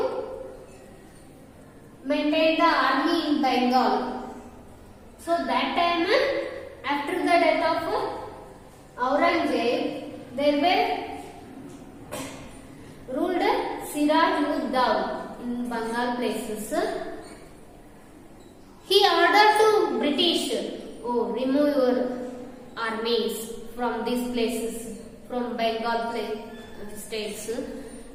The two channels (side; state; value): both; identical; correlation 1.00